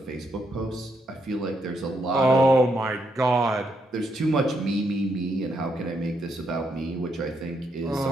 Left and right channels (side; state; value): both; normal; correlation 0.78